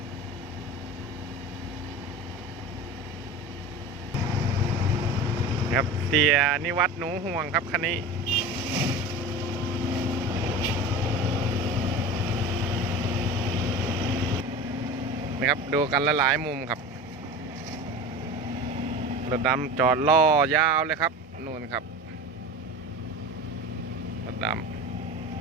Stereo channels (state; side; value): normal; both; correlation 0.32